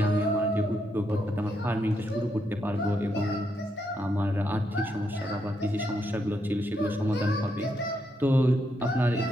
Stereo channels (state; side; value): normal; both; correlation 0.79